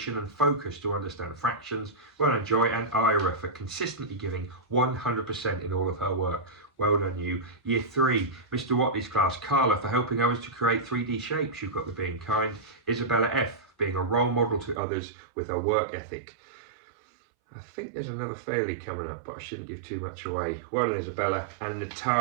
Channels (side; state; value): left; drops out; at 14.8 s